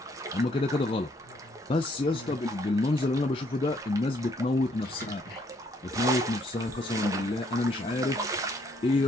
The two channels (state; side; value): normal; both; correlation 0.67